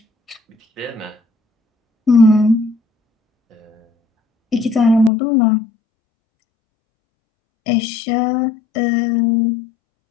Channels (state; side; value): drops out; right; at 5.1 s